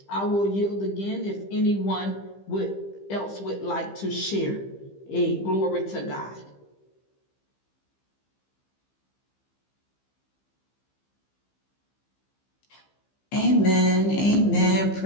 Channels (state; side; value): late; right; 15 ms